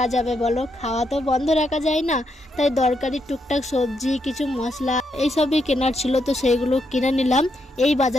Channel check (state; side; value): normal; both; correlation 0.79